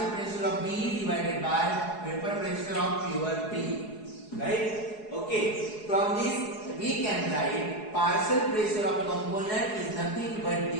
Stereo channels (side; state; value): right; late; 4.7 ms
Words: pressure of B divided by vapor pressure of pure B, right? Okay, from this we can write partial pressure of component is nothing but